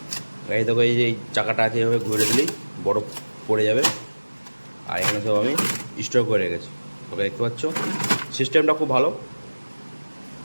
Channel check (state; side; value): inverted; both; correlation -1.00